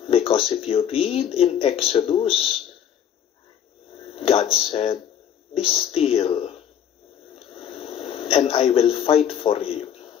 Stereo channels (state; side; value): quieter; right; 9.3 dB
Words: Because if you read in Exodus, God said, be still, and I will fight for you.